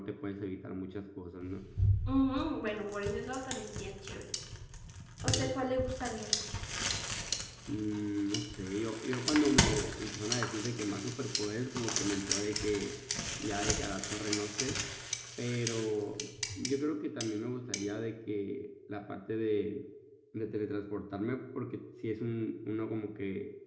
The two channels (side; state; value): both; identical; correlation 1.00